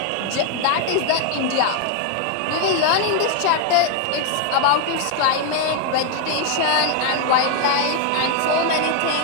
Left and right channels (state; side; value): different; both; correlation 0.00